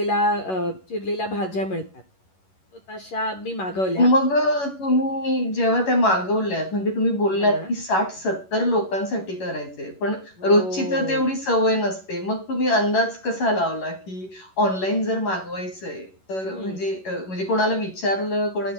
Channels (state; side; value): late; right; 11 ms